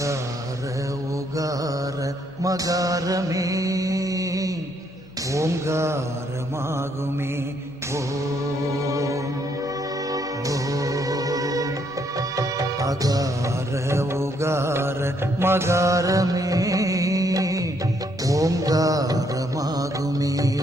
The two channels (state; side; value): normal; both; correlation 0.71